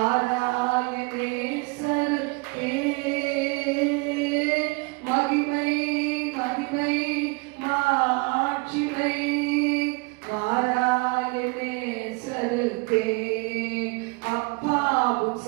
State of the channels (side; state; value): left; quieter; 28.6 dB